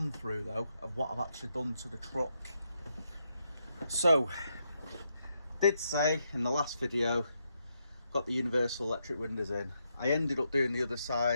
through though of what I've actually done to the truck. So, did say in the last video, got the universal electric windows in. I ended up doing the other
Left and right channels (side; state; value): both; inverted; correlation -0.81